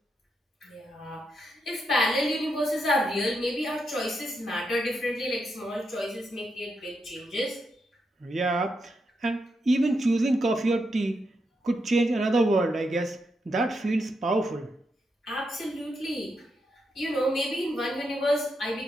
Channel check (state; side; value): normal; both; correlation 0.83